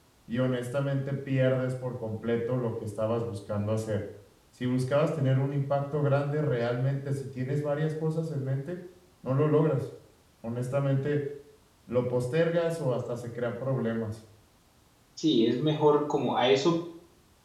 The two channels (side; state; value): both; identical; correlation 1.00